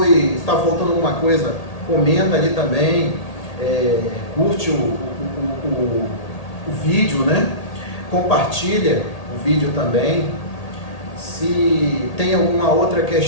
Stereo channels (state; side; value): late; right; 1.8 ms